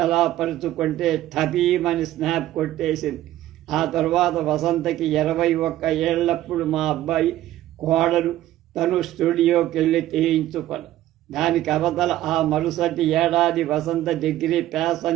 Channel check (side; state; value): left; quieter; 14.1 dB